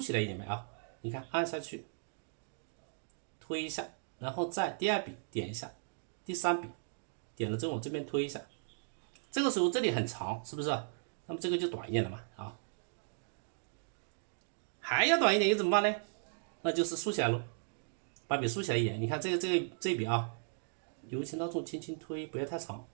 来一点呗啊！你看按下去，推一下，然后再第2笔点一下，第3笔点了之后往这边推一下。这个时候这里很长，是不是？那么这个就短一点了嘛啊？还要短一点又怎么办呢？那就是竖起来喽，把笔竖起来一点。你看这一笔啊，由轻到重，轻轻推，不要太长。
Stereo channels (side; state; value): left; silent; digital silence